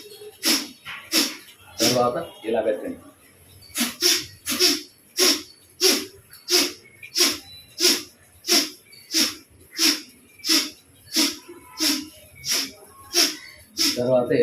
తర్వాత ఇలా పెట్టండి. తర్వాత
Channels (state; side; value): identical; both; correlation 1.00